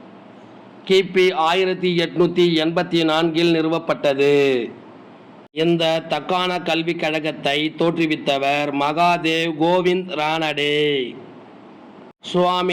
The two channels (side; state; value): both; identical; correlation 1.00